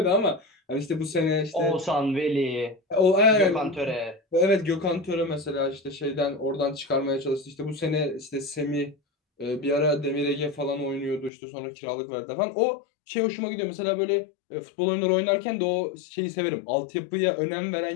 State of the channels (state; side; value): drops out; right; at 11.3 s